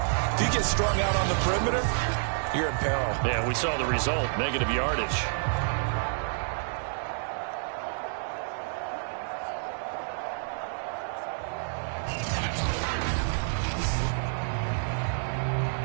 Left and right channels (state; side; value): silent; left; digital silence